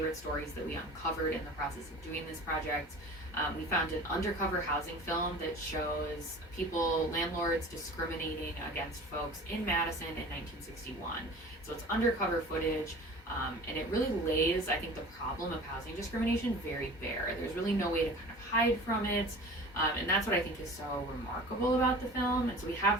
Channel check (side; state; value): both; normal; correlation 0.40